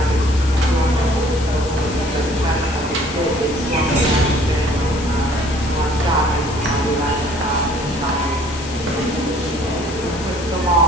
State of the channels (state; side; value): noise; left; hiss, 13 dB below the sound